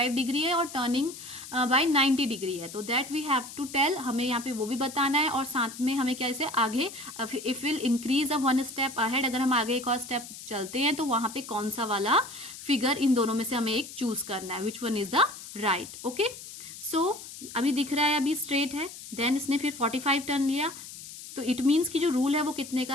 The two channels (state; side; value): noise; left; hiss, 13 dB below the sound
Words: डिग्री है और टर्निंग बाय 90 डिग्री है. तो that we have to tell, हमें यहाँ पे वो भी बताना है. और साथ में हमें क्या इसे आगे, if will increase a 1 step ahead, अगर हम आगे एक और स्टेप चलते हैं तो वहां पे कौन सा वाला फिगर इन दोनों में से हमें एक चूज करना है, which one is the right. Okay, so अभी दिख रहा है, अभी स्ट्रेट है, देन इसने फिर 45 टर्न लिया, तो इट मीन्स कि जो रूल है वो कितने